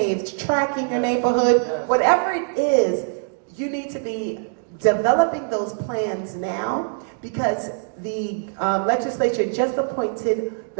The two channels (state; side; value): silent; left; digital silence